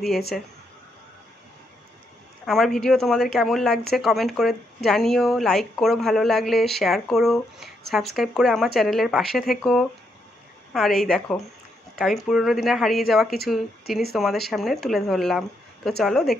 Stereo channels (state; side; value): normal; both; correlation 0.78